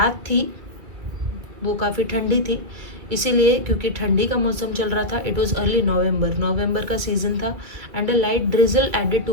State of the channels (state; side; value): late; left; 2.3 ms